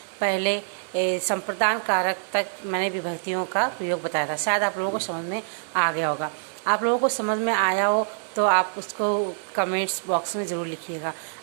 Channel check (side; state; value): left; silent; 58 dB below the other